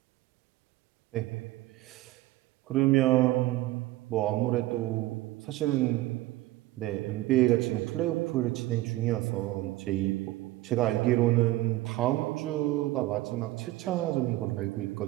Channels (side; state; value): left; quieter; 17.5 dB